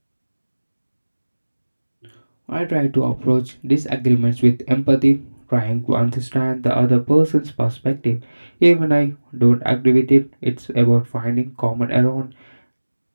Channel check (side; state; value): both; inverted; correlation -1.00